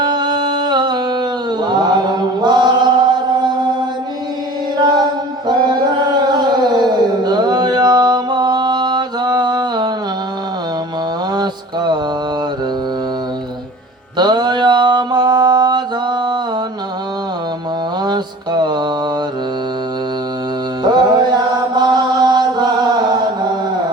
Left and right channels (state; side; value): normal; both; correlation 0.43